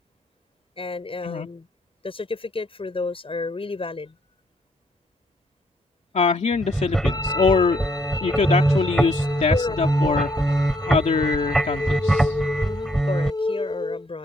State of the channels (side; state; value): both; normal; correlation 0.70